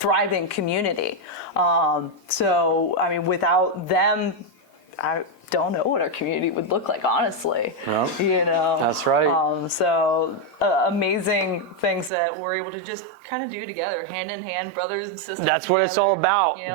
community. Without them, I don't know what our community would look like, honestly. Yep. That's right. Amazing things that we're able to just kind of do together, hand in hand, brothers and sisters That's together. That's what it's all about.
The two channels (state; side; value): drops out; left; at 12.1 s